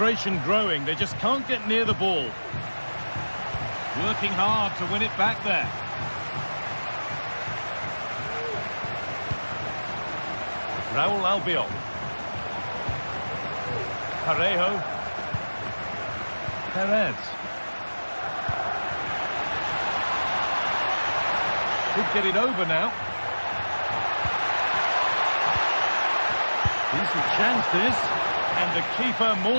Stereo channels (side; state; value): both; inverted; correlation -1.00